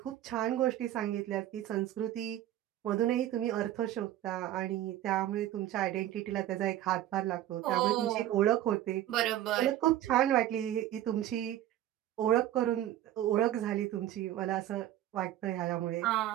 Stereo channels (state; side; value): quieter; left; 12.9 dB